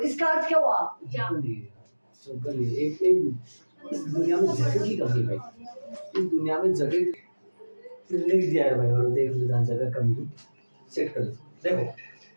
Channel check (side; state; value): both; inverted; correlation -1.00